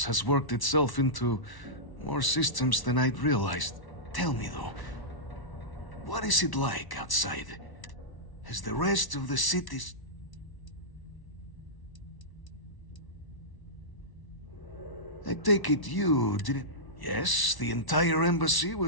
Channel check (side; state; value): right; late; 1.1 ms